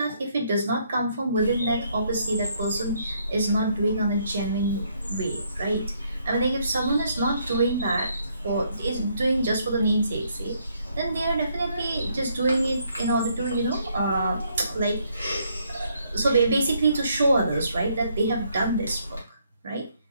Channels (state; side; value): inverted; both; correlation -0.71